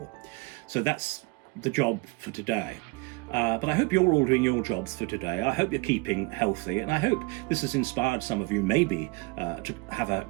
So that's the job for today. But I hope you're all doing your jobs for today. I hope you're keeping healthy, and I hope this has inspired some of you maybe to have a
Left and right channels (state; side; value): quieter; left; 25.7 dB